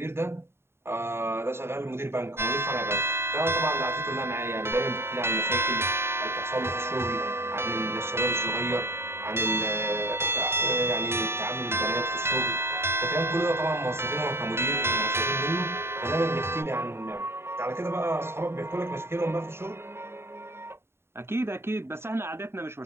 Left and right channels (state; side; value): late; left; 0.12 ms